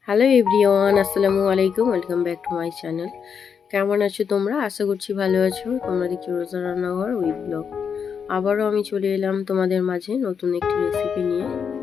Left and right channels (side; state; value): right; quieter; 6.8 dB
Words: Hello everyone, আসসালামু আলাইকুম। Welcome back to my channel. কেমন আছো তোমরা? আশা করছি ভালো আছো। তোমরা দেখছো রোজা রান্নাঘর উইথ ব্লগ। আবারও আমি চলে এলাম তোমাদের মাঝে নতুন একটি রেসিপি নিয়ে।